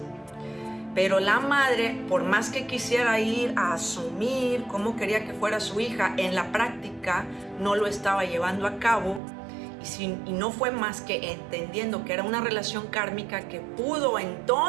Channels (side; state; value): left; drops out; at 9.2 s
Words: Pero la madre, por más que quisiera ir a asumir cómo quería que fuera su hija, en la práctica no lo estaba llevando a cabo y no fue más que entendiendo que era una relación kármica que pudo